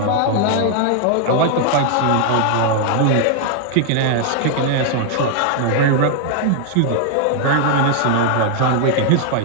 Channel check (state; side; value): different; both; correlation 0.00